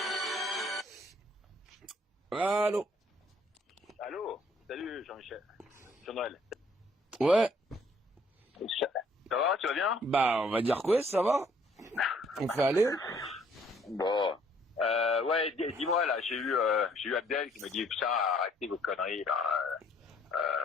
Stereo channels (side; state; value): both; normal; correlation 0.63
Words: Allô. Allô. Salut Jean-Michel. Jean-Noël. Ouais. Ça va, tu vas bien? Bah, on va dire quoi, ça va. On fait aller. Bon. Ouais, dis-moi là, j'ai eu Abdel qui me dit putain, arrêtez vos conneries là.